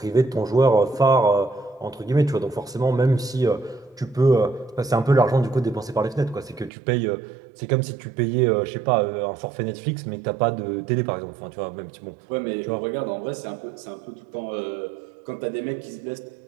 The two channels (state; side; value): drops out; left; at 6.7 s